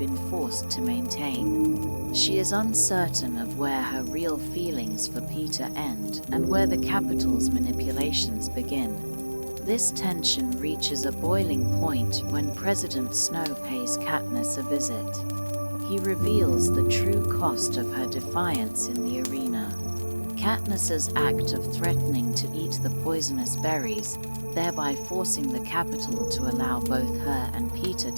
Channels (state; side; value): inverted; both; correlation -1.00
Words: forced to maintain. She is uncertain of where her real feelings for Peter end and where the Capitol's manipulations begin. This tension reaches a boiling point when President Snow pays Katniss a visit. He reveals the true cost of her defiance in the arena. Katniss's act of threatening to eat the poisonous berries, thereby forcing the Capitol to allow both her and Peter